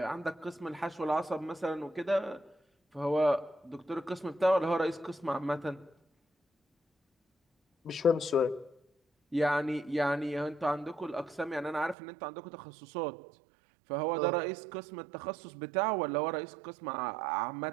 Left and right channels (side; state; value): left; drops out; at 12.0 s